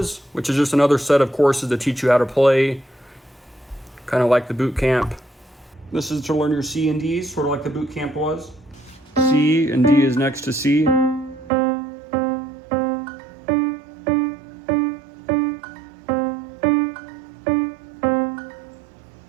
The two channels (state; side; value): drops out; left; at 11.5 s